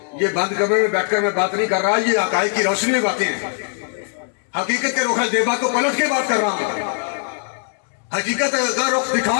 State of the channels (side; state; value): right; silent; digital silence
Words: یہ بند کمرے میں بیٹھ کر میں بات نہیں کر رہا، یہ حقائق کی روشنی میں باتیں ہیں. حقیقت کے رخ زیبا کو پلٹ کے بات کر رہا ہوں، حقیقت کا رخ دکھا